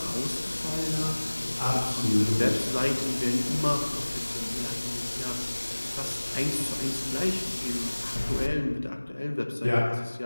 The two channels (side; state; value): both; inverted; correlation -1.00